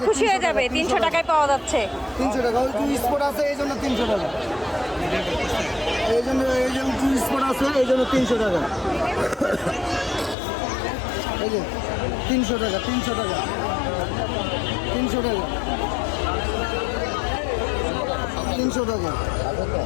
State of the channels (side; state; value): right; drops out; at 10.4 s